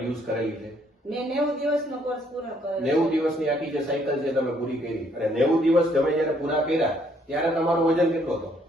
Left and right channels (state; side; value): normal; both; correlation 0.67